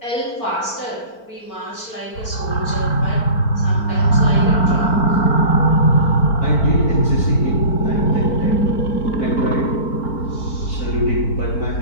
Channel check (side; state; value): right; late; 4.4 ms